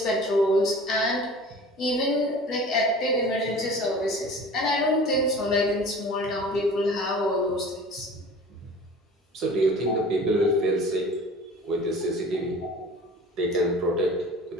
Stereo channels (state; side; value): normal; both; correlation 0.42